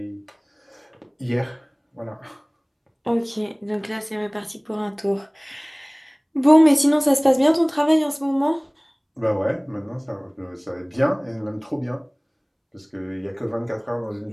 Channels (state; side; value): identical; both; correlation 1.00